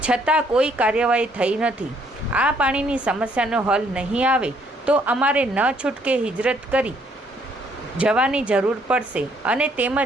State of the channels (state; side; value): normal; both; correlation 0.67